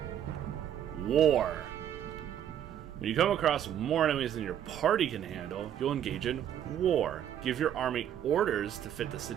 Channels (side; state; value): left; quieter; 10.2 dB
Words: War. When you come across more enemies than your party can handle, you'll engage in war. Give your army orders to fit the